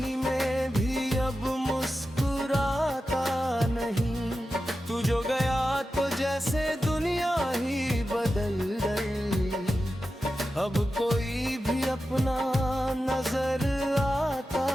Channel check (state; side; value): normal; both; correlation 0.92